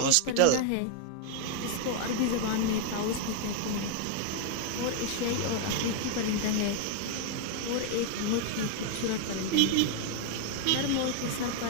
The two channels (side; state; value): both; different; correlation 0.00